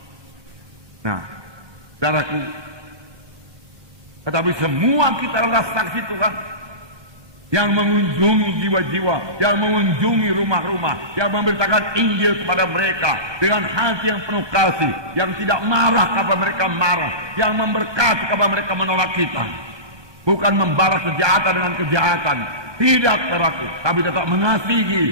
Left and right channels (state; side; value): late; left; 1.2 ms